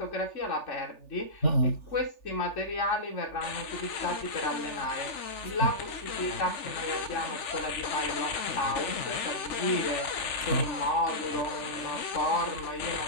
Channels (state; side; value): late; right; 3.4 ms